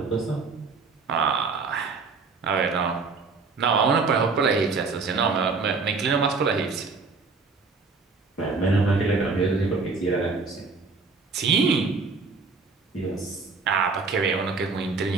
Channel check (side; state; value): left; quieter; 4.4 dB